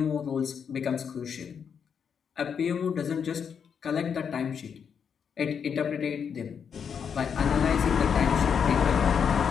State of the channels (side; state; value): right; quieter; 7.1 dB